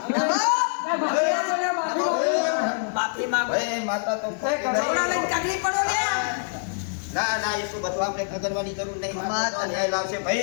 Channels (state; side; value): silent; right; digital silence